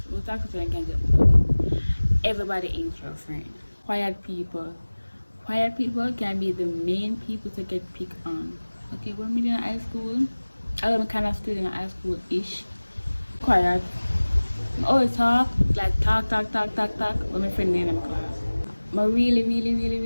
So all talk to you, so then can get money. Everybody ain't your friend. Quiet people can be the main people to get picked on. Okay, when we in high school, I'm kind of still in high school-ish. Quiet. I always talk when my friend in my class. I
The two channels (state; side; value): inverted; both; correlation -1.00